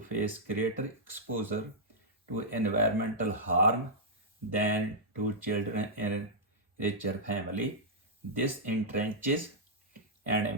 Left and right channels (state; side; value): normal; both; correlation -0.10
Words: face greater exposure to environmental harm than to children in richer families. This entrenches and